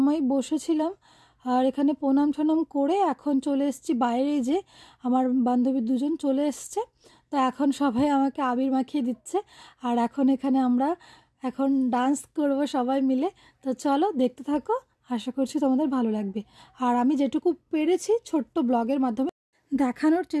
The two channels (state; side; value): identical; both; correlation 1.00